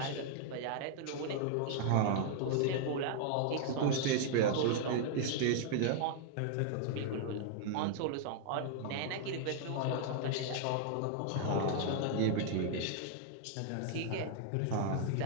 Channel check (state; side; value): different; both; correlation 0.00